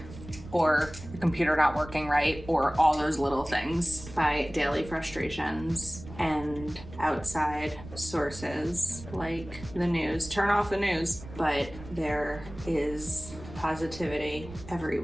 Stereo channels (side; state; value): right; noise; rumble, 15 dB below the sound